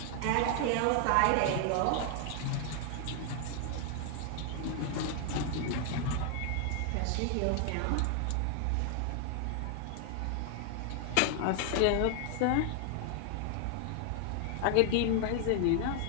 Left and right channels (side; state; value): both; different; correlation 0.00